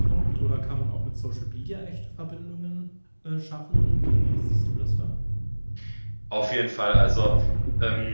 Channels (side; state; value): both; inverted; correlation -1.00